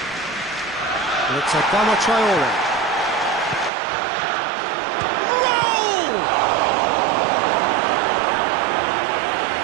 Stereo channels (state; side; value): drops out; left; at 3.7 s